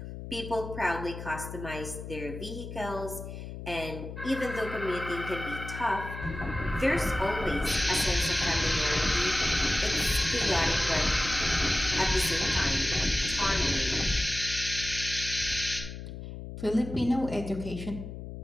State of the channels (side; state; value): left; noise; hum, 9 dB below the sound